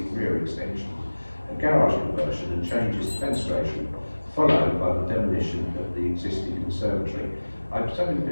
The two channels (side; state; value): both; inverted; correlation -1.00